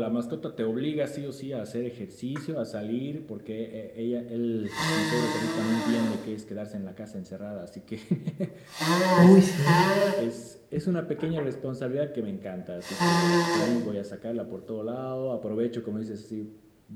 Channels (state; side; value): identical; both; correlation 1.00